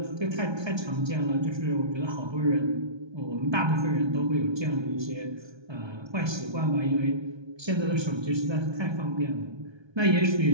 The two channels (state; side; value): late; left; 1.3 ms